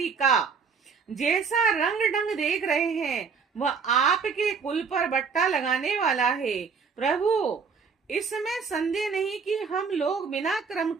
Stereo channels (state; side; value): quieter; left; 5.6 dB